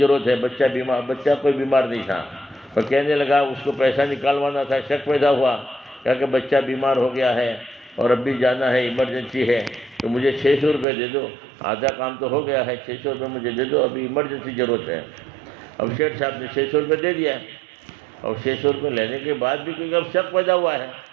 ہے، بچہ کوئی بیمار نہیں تھا، اور کہنے لگا اس کو پیسہ نکالوانا تھا، شک پیدا ہوا، کہا کہ بچہ بیمار ہو گیا ہے اور اب بھی جانا ہے، ایمرجنسی ہے، تو مجھے 600 روپے دے دو، آدھا کام تو ہو گیا ہے، 600 روپے مجھے دے دو، ابھی ایمرجنسی ضرورت ہے۔ اب شیٹھ صاحب نے 600 روپے دے دیا، اور 600 روپے لینے کے بعد بھی کیونکہ اب شک پیدا ہوا ہے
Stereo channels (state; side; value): drops out; left; at 10.9 s